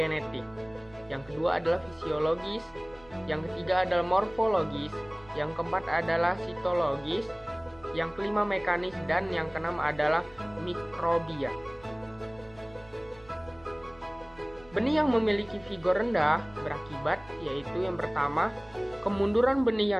yang kedua adalah fisiologis, yang ketiga adalah morfologis, yang keempat adalah sitologis, yang kelima mekanis, dan yang keenam adalah mikrobia. Benih yang memiliki vigor rendah berakibat yaitu yang pertama, kemunduran benih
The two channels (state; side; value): noise; right; hum, 24 dB below the sound